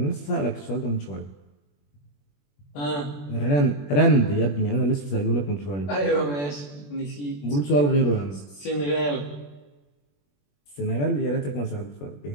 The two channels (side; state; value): right; late; 21 ms